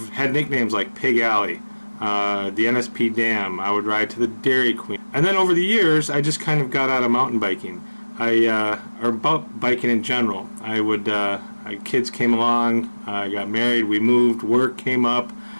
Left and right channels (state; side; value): inverted; both; correlation -1.00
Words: had nicknames like Pig Alley, the NSP Dam. I would ride to the Dairy Queen. And then over the years, I just kind of got out of mountain biking, or biking in general. Kids came along, I got married, we moved, work came up,